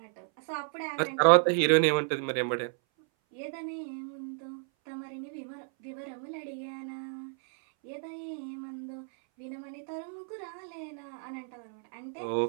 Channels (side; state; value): left; silent; 56 dB below the other